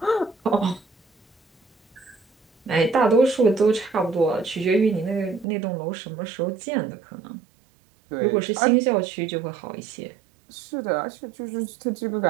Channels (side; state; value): left; drops out; at 5.5 s